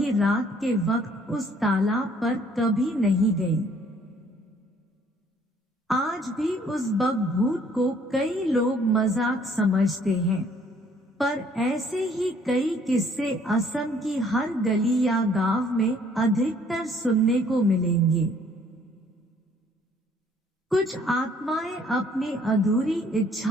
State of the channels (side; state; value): both; normal; correlation 0.61